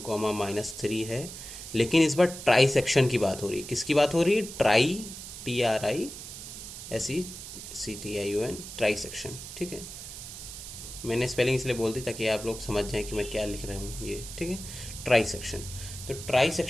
है। लेकिन इस बार ट्राई सेक्शन की बात हो रही है। किसकी बात हो रही है? Try, TRISECTION, try section. ठीक है, मैंने स्पेलिंग इसलिए बोल दी ताकि आप लोग समझ जाएं कि मैं क्या लिख रहा हूँ ये। ठीक है, ट्राई सेक्शन। तो ट्राई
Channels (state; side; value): noise; right; hiss, 11 dB below the sound